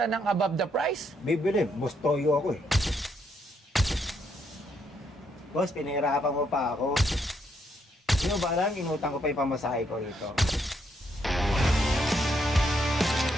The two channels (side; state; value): both; normal; correlation 0.75